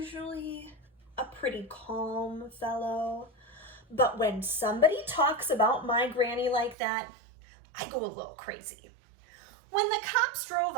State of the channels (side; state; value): left; drops out; at 6.8 s